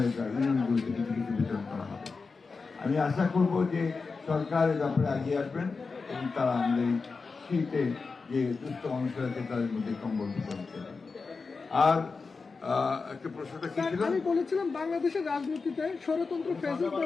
ইউনিয়নগুলিতে কিছু কিছু বিতরণ করা হবে। আমি আশা করব যে সরকার এ ব্যাপারে এগিয়ে আসবেন এবং তারা আমাদের শীতে যে দুস্থ মানুষের আছে তাদের মধ্যে কম্বল বিতরণ করবেন। আর একটা প্রশ্নটা কি ছিল? আমি বলেছিলাম বাংলাদেশের রাজনীতিতে ষড়যন্ত্র, ফ্যাসিস্ট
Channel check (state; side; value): quieter; right; 4.5 dB